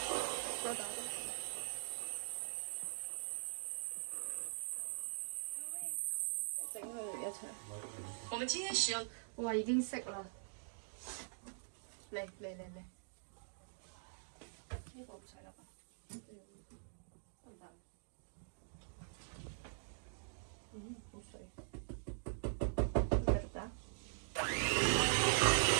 再打多。整佢哋一齊。我們今天使用。哇！已經識啦。嚟。呢個唔使啦吧？得唔得？好水。繼續打。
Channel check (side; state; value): left; silent; digital silence